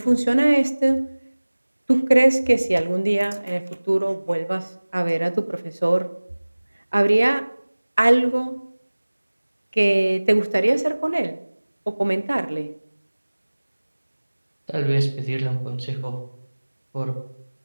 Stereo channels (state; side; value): inverted; both; correlation -1.00